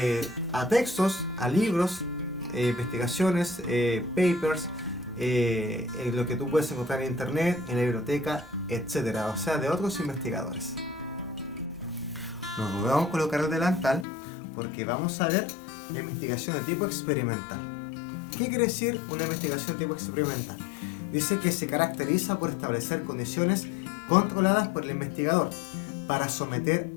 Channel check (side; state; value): right; drops out; at 14.1 s